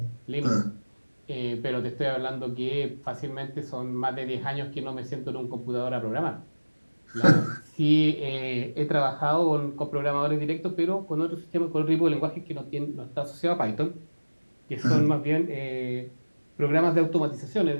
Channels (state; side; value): inverted; both; correlation -1.00